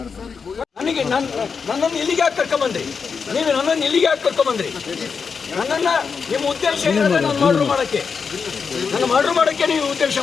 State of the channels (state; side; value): quieter; right; 5.7 dB